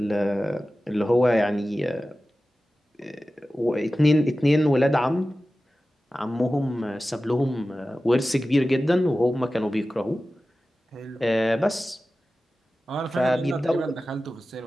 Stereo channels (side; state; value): both; normal; correlation 0.95